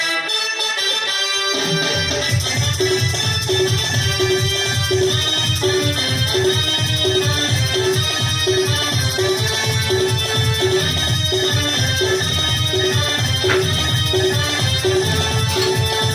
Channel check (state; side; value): identical; both; correlation 1.00